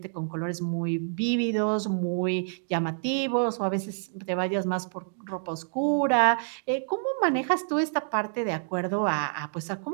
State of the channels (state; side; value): silent; left; digital silence